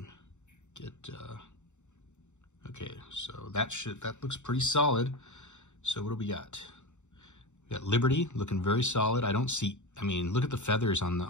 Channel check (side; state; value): right; late; 0.84 ms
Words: get, okay, so that looks pretty solid. So what do we got? We got Liberty looking very solid. I don't see, I mean, look at the feathers on